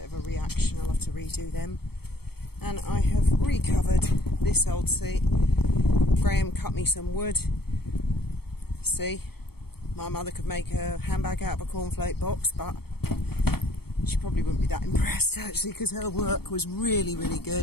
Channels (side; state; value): right; late; 0.96 ms